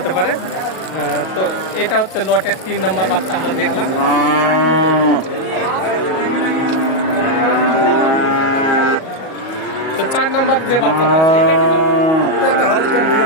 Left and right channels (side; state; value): right; late; 37 ms